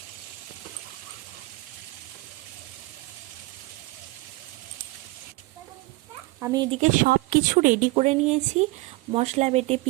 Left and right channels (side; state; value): left; quieter; 21.8 dB